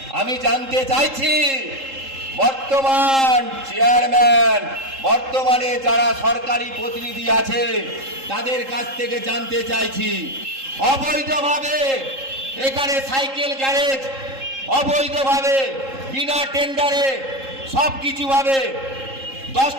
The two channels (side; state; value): left; late; 3.7 ms